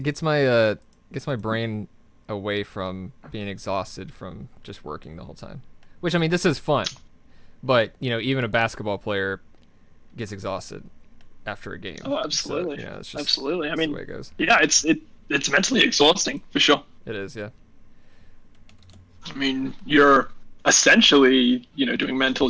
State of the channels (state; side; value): identical; both; correlation 1.00